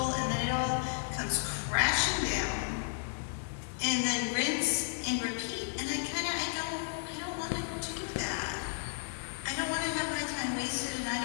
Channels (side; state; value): right; silent; digital silence